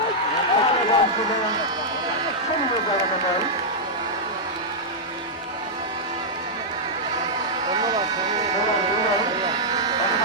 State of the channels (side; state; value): both; normal; correlation -0.08